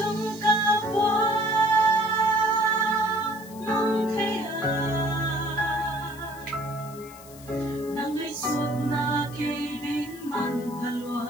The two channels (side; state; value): left; noise; hiss, 20 dB below the sound